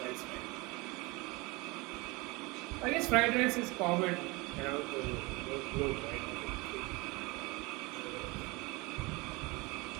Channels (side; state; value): left; quieter; 24.8 dB